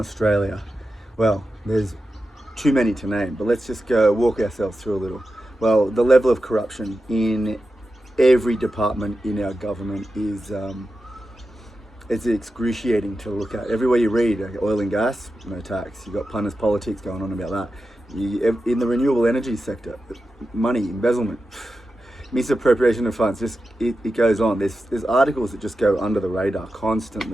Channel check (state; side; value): normal; both; correlation 0.91